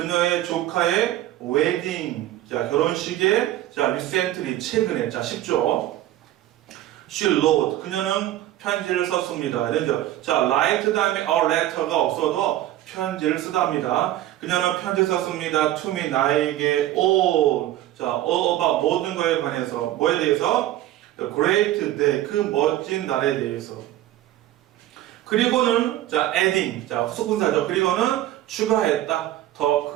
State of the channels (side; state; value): left; quieter; 13.9 dB